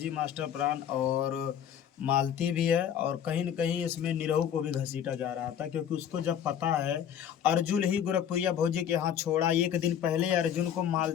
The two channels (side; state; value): right; quieter; 9.2 dB